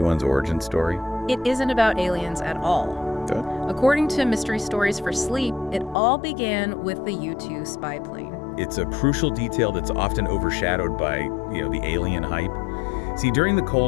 origin story? It isn't about aliens at all. Good. According to Mystery Stories for Sleep, it all began with the U-2 spy plane. It's a crucial detail that's often overshadowed by, the alien hype. See, during the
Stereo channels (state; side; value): drops out; right; at 6.0 s